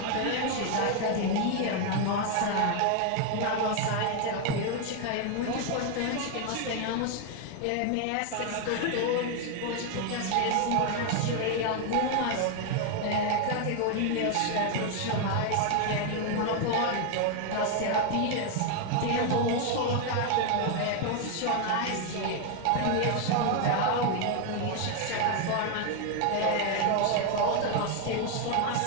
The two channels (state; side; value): different; both; correlation 0.01